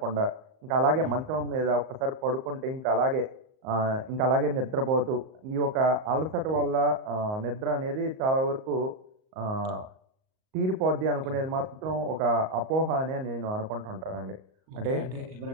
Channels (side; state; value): left; late; 38 ms